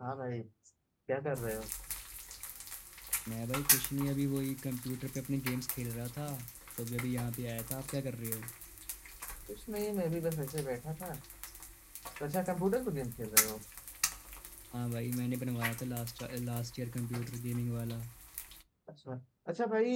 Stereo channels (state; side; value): identical; both; correlation 1.00